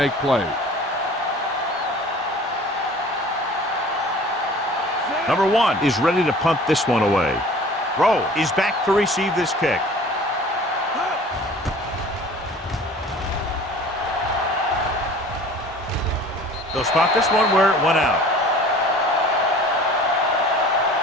plays. Number 1 is ready to punt this one away. Rowe is back to receive this kick. They'll spot this one where it went out.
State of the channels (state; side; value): normal; both; correlation 0.45